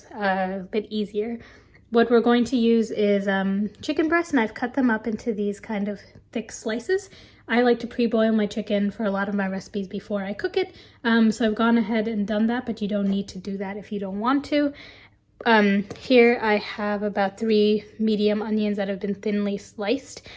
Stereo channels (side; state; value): both; identical; correlation 1.00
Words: a bit easier. What we're going to use is chicken breasts, and I've cut them up into these kind of thick slices. I like to pre-boil my chicken for a lot of my recipes before I cook it. So I've gone ahead and done that, but you don't need to do that if you don't want to. Here I have about 3 medium onions that have been thinly sliced.